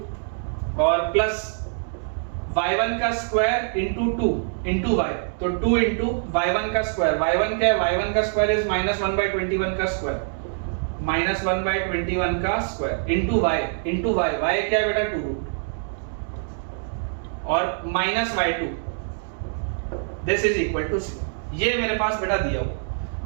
और प्लस y1 का स्क्वायर इनटू 2 इनटू y, तो 2 इनटू y1 का स्क्वायर, y1 क्या है, y1 का स्क्वायर इज -1/21 का स्क्वायर, -1/21 का स्क्वायर इनटू y क्या है बेटा 2√2 और -y2 this is equal to 0। ये मेरे पास बेटा दिया हुआ,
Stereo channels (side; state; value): left; silent; digital silence